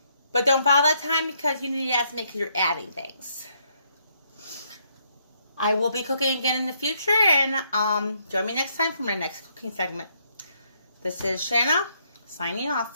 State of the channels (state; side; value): inverted; both; correlation -0.73